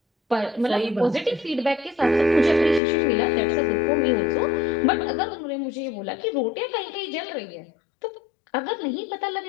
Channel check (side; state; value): right; drops out; at 2.8 s